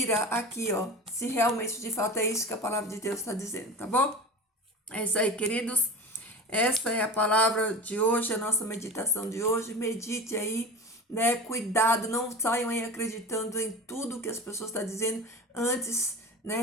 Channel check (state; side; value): normal; both; correlation 0.32